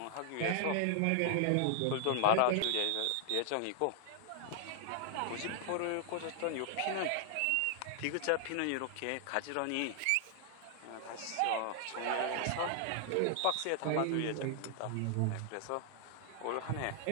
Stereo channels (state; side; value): different; both; correlation 0.00